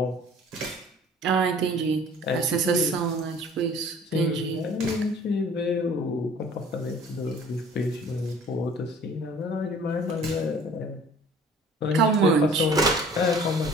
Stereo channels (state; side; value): normal; both; correlation 0.50